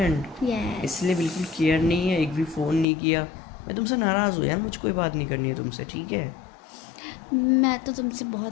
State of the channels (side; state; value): right; drops out; at 2.9 s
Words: यस। इसलिए बिल्कुल केयर नहीं है, एक भी फ़ोन नहीं किया। मैं तुमसे नाराज़ हूँ यार, मुझे कोई बात नहीं करनी है तुमसे, ठीक है? मैं तो तुमसे